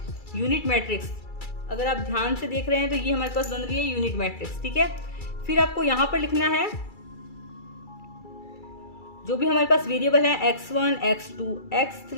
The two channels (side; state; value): right; late; 2.3 ms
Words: यूनिट मैट्रिक्स। अगर आप ध्यान से देख रहे हैं तो ये हमारे पास बन रही है यूनिट मैट्रिक्स, ठीक है। फिर आपको यहां पर लिखना है जो भी हमारे पास वेरिएबल है x1, x2,